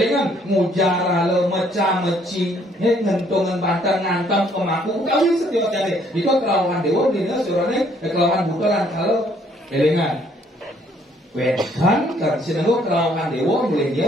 mujara le meca meci ngentungan bantan ngantem kemaku kawin setiap jadi itu kerawan dewa dina surane kerawan butulan kalau elingan Wedan kan sinenggo kelawan dewa boleh dia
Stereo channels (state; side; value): normal; both; correlation 0.65